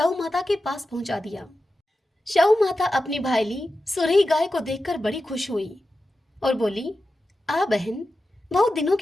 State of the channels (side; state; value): both; normal; correlation 0.92